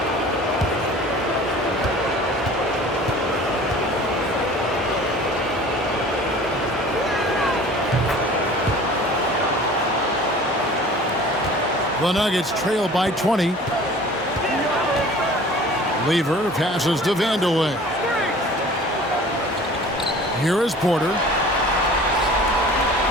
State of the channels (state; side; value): normal; both; correlation 0.45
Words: The Nuggets trail by 20. Lever passes to Vandeweghe. Here is Porter.